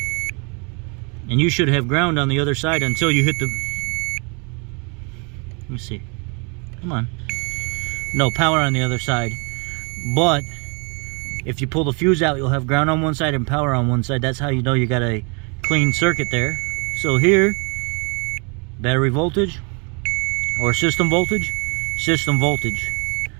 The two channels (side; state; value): left; quieter; 33.5 dB